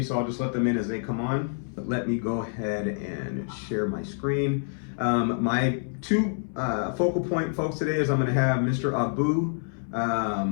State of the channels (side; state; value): right; silent; 59 dB below the other